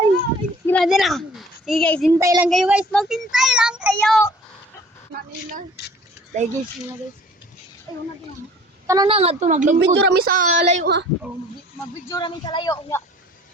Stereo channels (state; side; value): normal; both; correlation 0.51